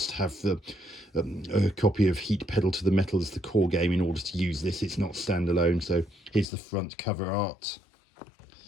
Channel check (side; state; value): right; drops out; at 6.5 s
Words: have a copy of Heat Pedal to the Metal as the core game in order to use this. It's not standalone. So here's the front cover art.